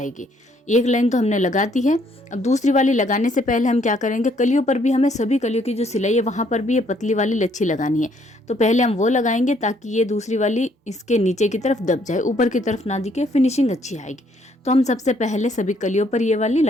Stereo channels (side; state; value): both; normal; correlation 0.67